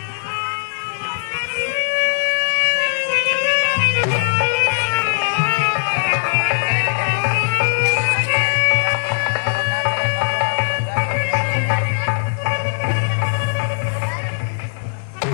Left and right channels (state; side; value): silent; right; digital silence